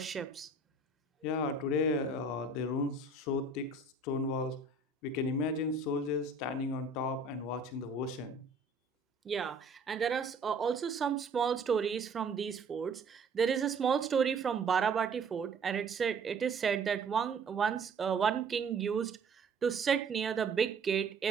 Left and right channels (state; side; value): quieter; left; 3.6 dB